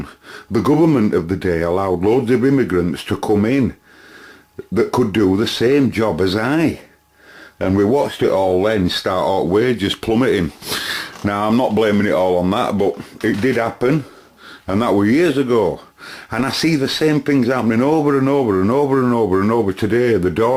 the government of the day allowed loads of immigrants to come in that could do the same job as I, and we watched it all then start out wages plummeting. Now, I'm not blaming it all on that, but it did happen, and that was years ago. And I see the same things happening over and over and over and over and over today. The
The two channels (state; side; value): identical; both; correlation 1.00